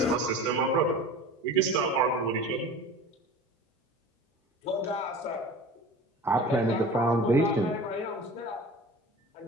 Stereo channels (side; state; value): both; normal; correlation 0.38